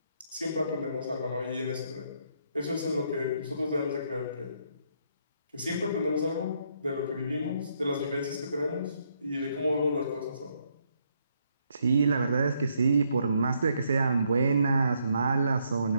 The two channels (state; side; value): inverted; both; correlation -0.74